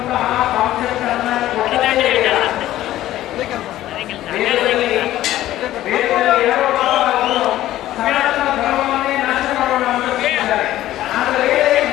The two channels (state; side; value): quieter; right; 14.1 dB